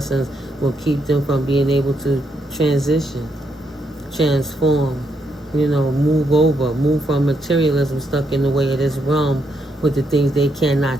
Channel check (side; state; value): both; normal; correlation 0.78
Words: will keep them from being able to transition, transform, move from materialism stuck in the way of this realm with the things they